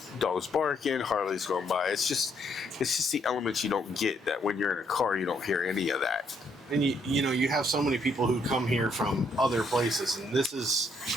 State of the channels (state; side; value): normal; both; correlation 0.71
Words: dogs barking, Harleys going by. It's just the elements you don't get that when you're in a car, you don't hear any of that. And you have so many people who come here from other places, and this